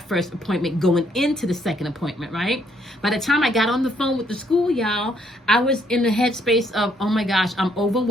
first appointment going into the second appointment, right? By the time I got on the phone with the school, y'all, I was in the headspace of, oh my gosh, I'm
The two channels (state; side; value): normal; both; correlation 0.70